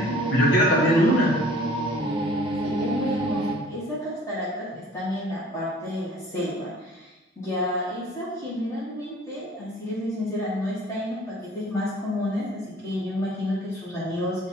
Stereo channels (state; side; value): normal; both; correlation 0.51